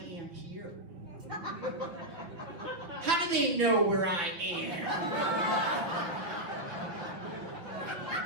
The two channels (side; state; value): left; late; 6.1 ms